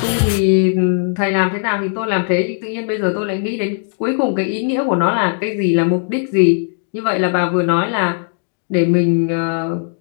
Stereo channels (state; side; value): silent; right; digital silence